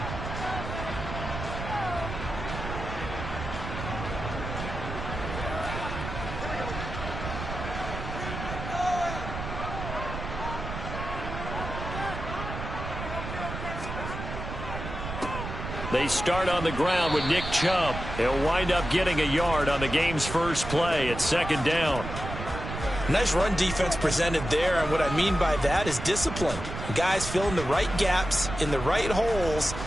They start on the ground with Nick Chubb. He'll wind up getting a yard on the game's first play at second down. Nice run defense presented there, and what I mean by that is discipline. Guys filling the right gaps in the right holes,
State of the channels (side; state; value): right; noise; rumble, 7 dB below the sound